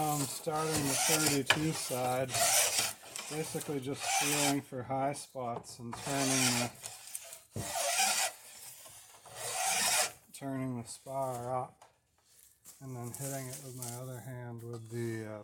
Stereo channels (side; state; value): both; identical; correlation 1.00